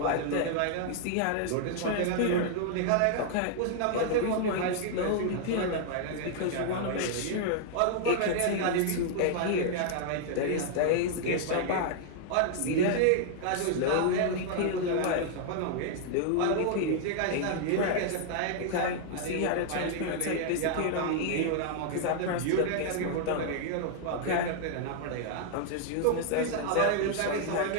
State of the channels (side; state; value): both; different; correlation -0.01